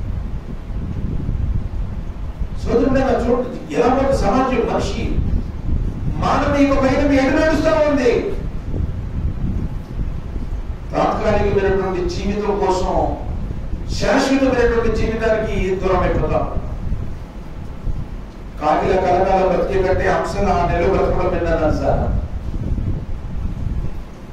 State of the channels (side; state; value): both; identical; correlation 1.00